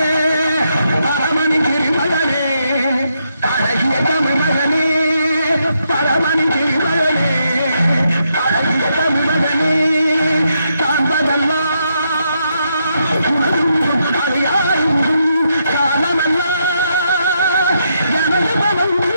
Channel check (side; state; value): both; inverted; correlation -0.79